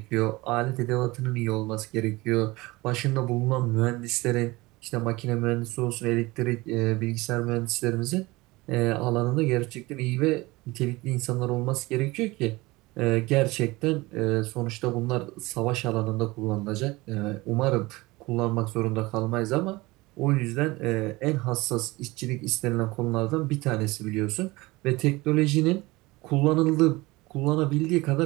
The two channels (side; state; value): left; quieter; 21.6 dB